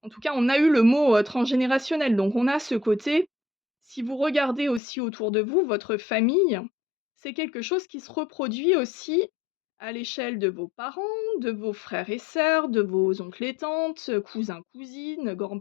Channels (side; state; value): right; drops out; at 4.8 s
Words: tout cas, on a eu le mot, transgénérationnel, donc on a ce côté, si vous regardez aussi autour de vous, votre famille, c'est quelque chose qui se reproduit aussi à l'échelle de vos parents, de vos frères et sœurs, de vos oncles et tantes, cousins, cousines,